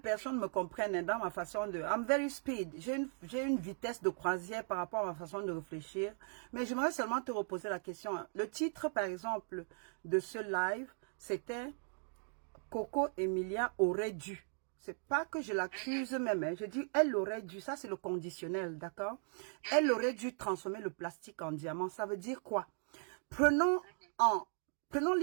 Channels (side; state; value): left; silent; 52 dB below the other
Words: me comprennent dans ma façon de... I'm very speed. J'ai une vitesse de croisière par rapport à ma façon de réfléchir. Mais j'aimerais seulement te reposer la question. Le titre, par exemple, de ce live, c'était Coco Emilia aurait dû. C'est pas que je l'accuse même. Hein. Je dis, elle aurait dû. Ça, c'est le conditionnel, d'accord? Elle aurait dû transformer le plastique en diamant. Ça veut dire quoi?